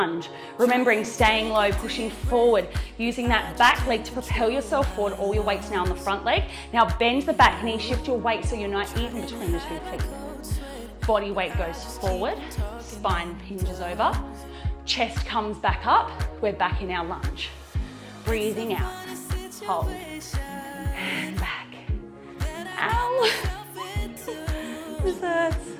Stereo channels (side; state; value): both; identical; correlation 1.00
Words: Remembering staying low, pushing forward, using that back leg to propel yourself forward, all your weight's now on the front leg. Now bend the back knee, shift your weight so you're not even between the 2 feet. Body weight goes forward, spine hinges over, chest comes back up, we're back in our lunge. Breathing out. Hold, and back. Ow! This hurts.